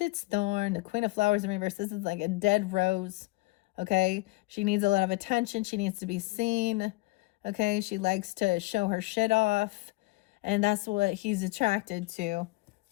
its thorn. The Queen of Flowers in reverse. This is like a dead rose. Okay, she needs a lot of attention. She needs to be seen. Okay, she likes to show her shit off, and that's what he's attracted to.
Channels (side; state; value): right; quieter; 23.3 dB